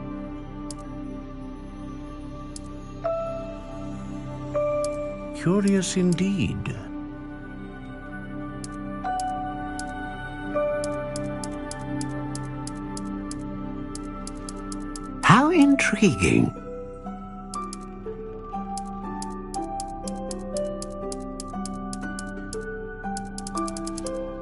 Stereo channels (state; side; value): identical; both; correlation 1.00